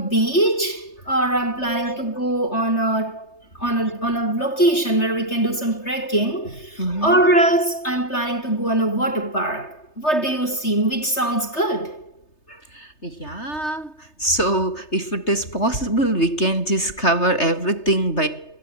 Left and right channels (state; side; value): late; right; 3.3 ms